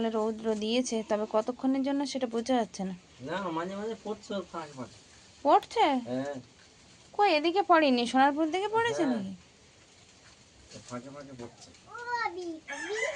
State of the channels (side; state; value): both; identical; correlation 1.00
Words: রৌদ্র দিয়েছে, তবে কতক্ষণের জন্য সেটা বোঝা যাচ্ছে না। মাঝে মাঝে পড়ছে? হ্যাঁ, কই এদিকে পড়েনি, সোনারপুর দিকে পড়েছে নাকি? ফাঁকে ফাঁকে পড়ছে।